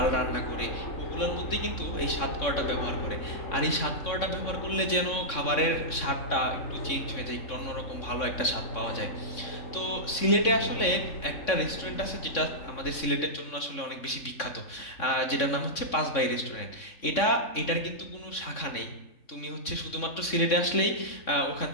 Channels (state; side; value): late; right; 3.6 ms